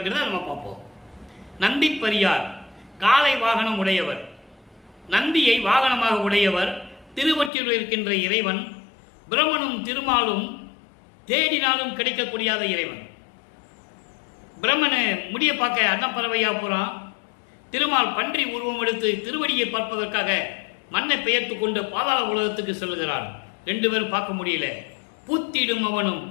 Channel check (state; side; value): drops out; right; at 7.5 s